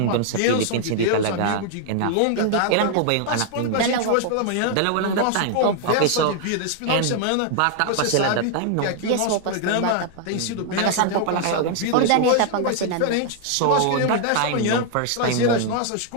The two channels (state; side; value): different; both; correlation 0.00